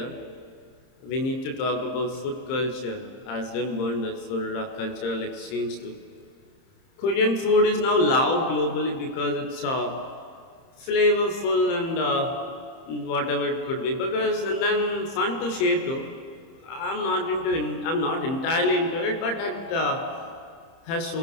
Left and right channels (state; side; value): late; right; 30 ms